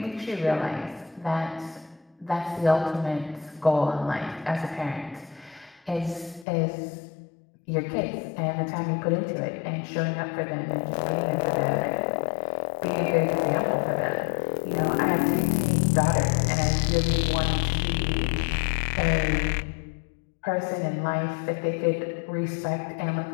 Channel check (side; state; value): right; drops out; at 6.5 s